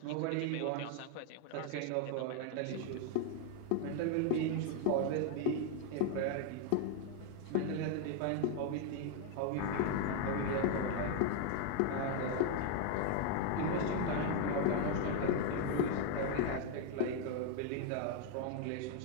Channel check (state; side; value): different; both; correlation 0.00